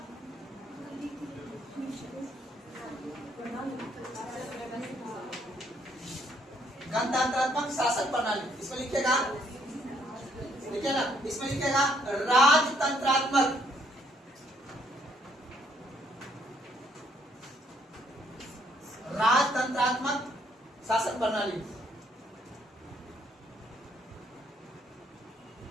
गणतंत्रात्मक शासन प्रणाली। इसमें लिखेगा, लिखे ना, इसमें लिखेगा राजतंत्रात्मक, राजतंत्रात्मक शासन प्रणाली।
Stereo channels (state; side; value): normal; both; correlation 0.69